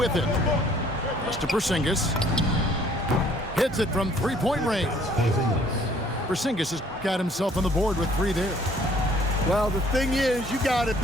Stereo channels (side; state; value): both; normal; correlation 0.59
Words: it. Just to Porzingis. Hits it from three-point range. Porzingis has got himself on the board with 3 there. Well, the thing is, you got to